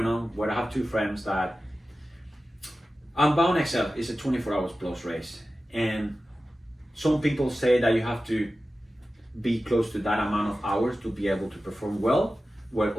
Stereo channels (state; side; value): normal; both; correlation 0.94